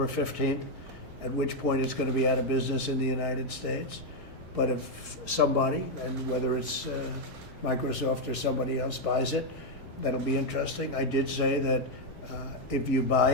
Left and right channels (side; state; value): both; normal; correlation 0.03